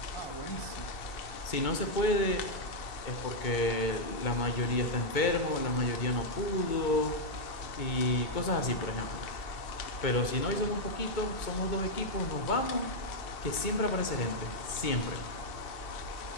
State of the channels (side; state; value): right; late; 2.2 ms